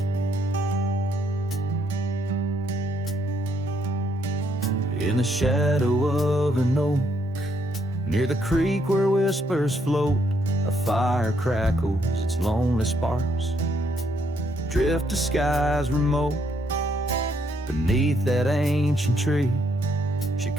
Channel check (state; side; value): normal; both; correlation 0.72